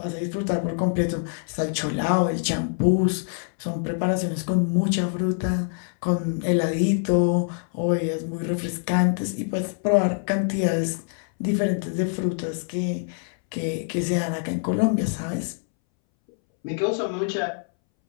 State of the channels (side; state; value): right; silent; 62 dB below the other